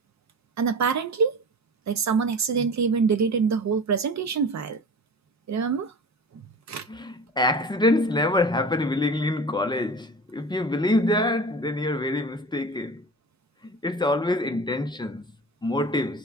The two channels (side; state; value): both; normal; correlation 0.35